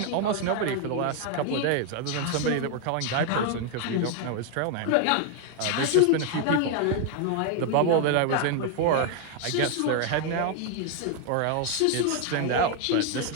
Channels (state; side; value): different; both; correlation 0.01